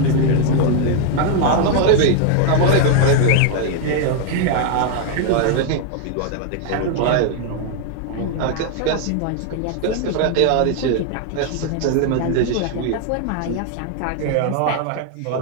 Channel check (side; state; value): both; different; correlation 0.00